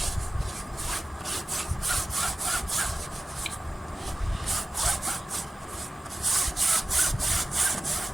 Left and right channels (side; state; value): both; normal; correlation 0.96